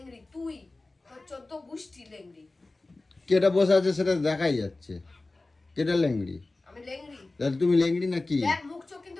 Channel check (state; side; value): quieter; right; 3.2 dB